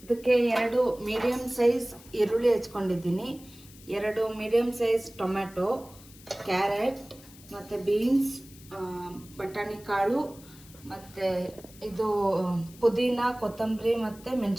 ಇದಕ್ಕೆ 2 ಮೀಡಿಯಮ್ ಸೈಜ್ ಈರುಳ್ಳಿ ಹೆಚ್ಕೊಂಡಿದ್ದೀನಿ, 2 ಮೀಡಿಯಮ್ ಸೈಜ್ ಟೊಮ್ಯಾಟೊ, ಕ್ಯಾರೆಟ್ ಮತ್ತು ಬೀನ್ಸ್, ಬಟಾಣಿ ಕಾಳು, ಮತ್ತು ಇದು ಪುದೀನ, ಕೊತ್ತಂಬರಿ ಮತ್ತು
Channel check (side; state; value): left; noise; hiss, 22 dB below the sound